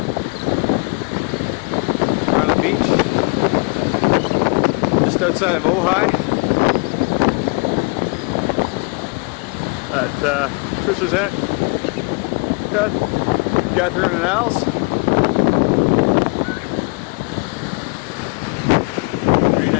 We're on a beach just outside of Ojai at Trisha's aunt Catherine and Al's.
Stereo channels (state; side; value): quieter; right; 32.5 dB